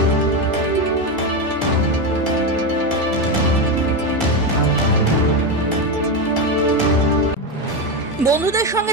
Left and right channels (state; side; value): normal; both; correlation 0.12